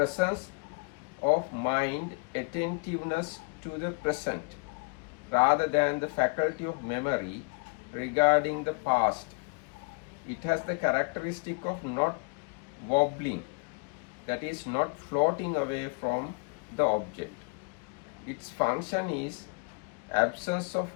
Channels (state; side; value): quieter; right; 33.0 dB